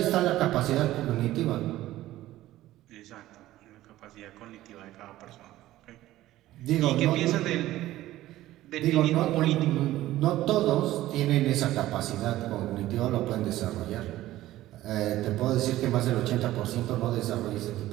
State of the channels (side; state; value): left; quieter; 15.3 dB